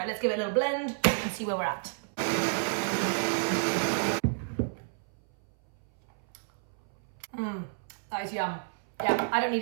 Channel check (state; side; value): silent; left; 58 dB below the other